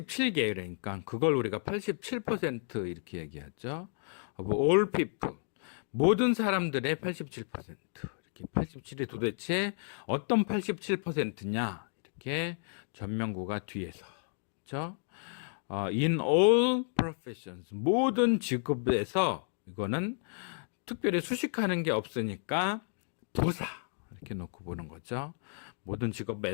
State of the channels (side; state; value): right; silent; 56 dB below the other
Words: 그러니까 그걸 우리가 87% 이렇게 얘기하죠. of all people, 모든 사람들의 87%. 이렇게 87이 도대체 어떤 87%냐? 이렇게 전명구가 뒤에서. 그렇죠? In all professions, 모든 직업에서, 이거는 특별히 수식하는 게 없으니까 부사 이렇게 놓고 보는 거죠. 모든